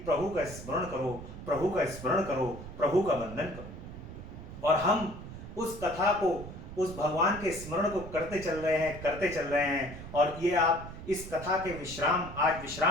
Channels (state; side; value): noise; right; rumble, 12 dB below the sound